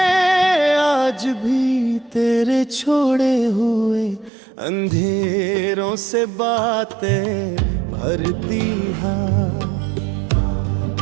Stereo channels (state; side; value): drops out; left; at 4.3 s